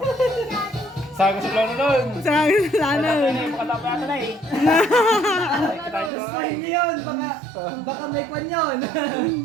Sago sa plano nun. Sabi sa Makatapa yata na eh. Gusto niyo yun. Baka may kwan yun.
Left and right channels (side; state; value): left; drops out; at 6.1 s